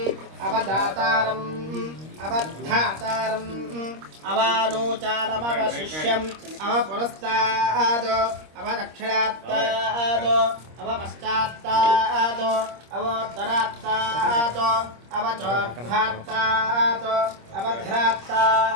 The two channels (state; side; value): late; left; 26 ms